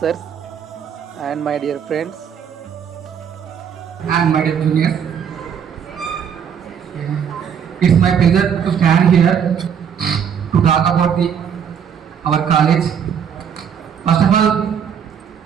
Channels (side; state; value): left; quieter; 7.8 dB